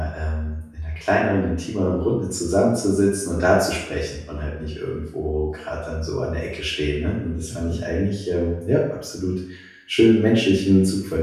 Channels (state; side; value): identical; both; correlation 1.00